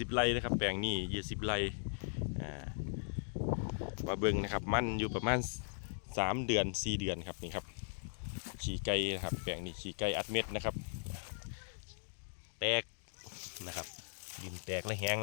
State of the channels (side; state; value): right; silent; digital silence